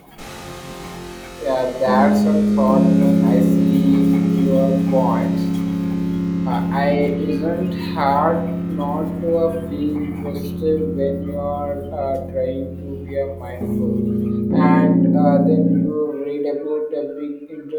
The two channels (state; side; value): identical; both; correlation 1.00